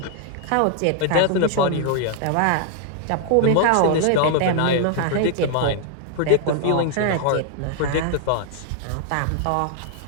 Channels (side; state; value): both; different; correlation 0.00